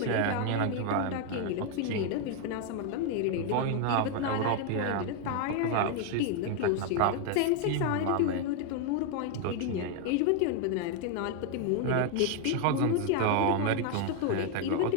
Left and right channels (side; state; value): both; different; correlation 0.01